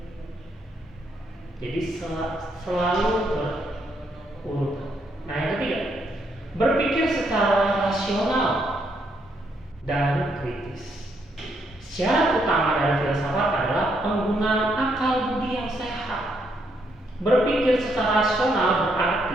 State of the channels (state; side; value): normal; both; correlation 0.75